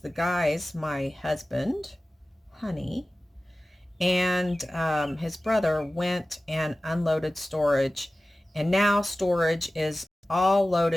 guys, my husband, Honey, and his brother went and unloaded storage, and now storage is all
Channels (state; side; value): normal; both; correlation 0.96